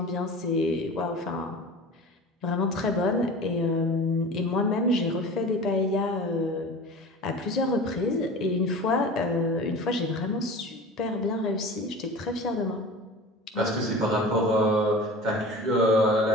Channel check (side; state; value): both; normal; correlation 0.36